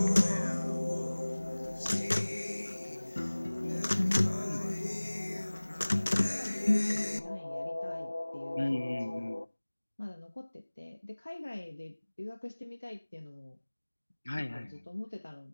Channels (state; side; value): inverted; both; correlation -1.00